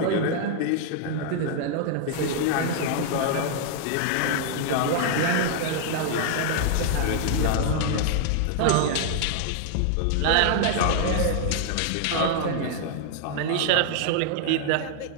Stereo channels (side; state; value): both; different; correlation -0.01